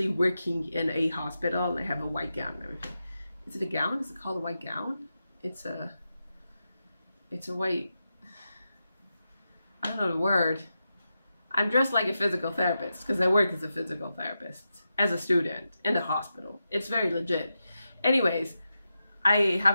working in a hospital, and I have a white gown and everything. Is it a gown? Is it called a white gown? It's a white, know the word. I'm dressed like a physical therapist because I work as a physical therapist as a student in the hospital. It's very legit. Anyways, I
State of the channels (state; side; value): inverted; both; correlation -0.89